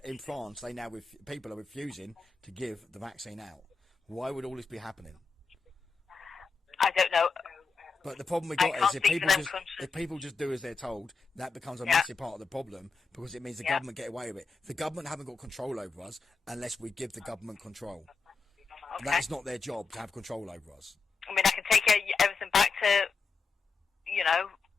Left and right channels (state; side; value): quieter; right; 4.7 dB